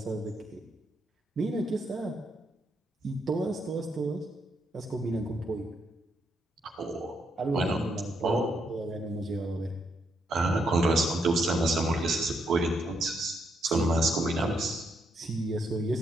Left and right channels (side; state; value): both; normal; correlation 0.77